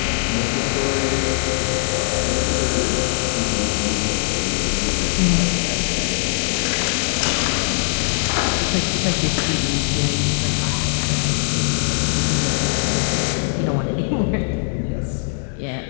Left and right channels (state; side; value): silent; right; digital silence